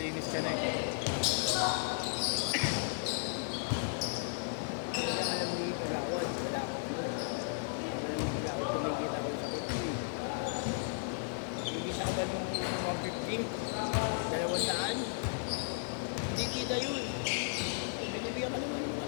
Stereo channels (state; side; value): silent; right; digital silence